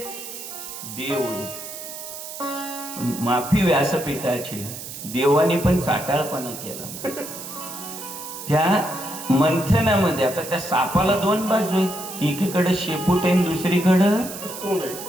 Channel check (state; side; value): noise; right; hiss, 10 dB below the sound